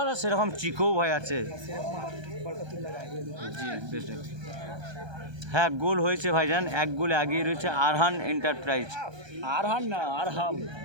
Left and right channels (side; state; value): left; late; 1.3 ms